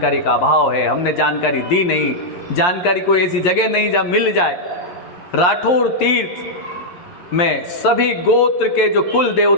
का अभाव है। हमने जानकारी दी नहीं, जानकारी कोई ऐसी जगह नहीं जहाँ मिल जाए। राठौर तीर्थ में सभी गोत्र के जो कुल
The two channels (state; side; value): late; right; 11 ms